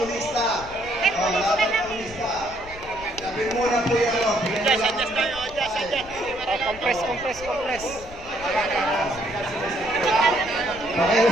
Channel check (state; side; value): noise; left; rumble, 16 dB below the sound